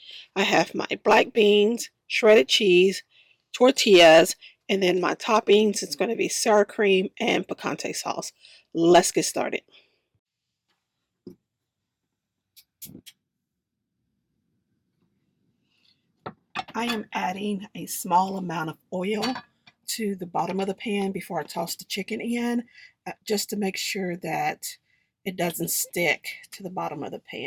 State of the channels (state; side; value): identical; both; correlation 1.00